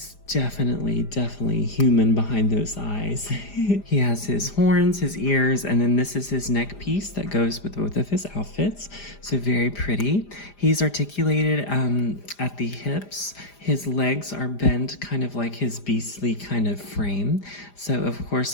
definitely human behind those eyes. He has his horns, his ears, and then this is his neck piece that goes with both of his outfits. So very pretty. He's articulated at the hips. His legs are bent kind of like his beastly kind of frame. So of course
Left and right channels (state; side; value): late; right; 4.9 ms